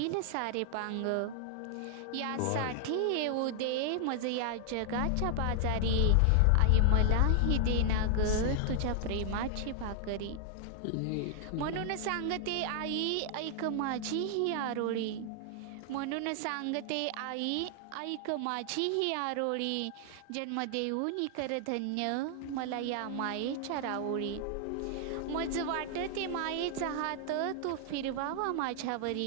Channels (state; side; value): different; both; correlation 0.00